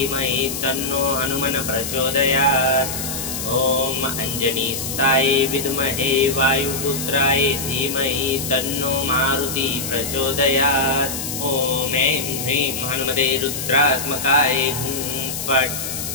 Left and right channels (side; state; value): left; noise; hiss, 5 dB below the sound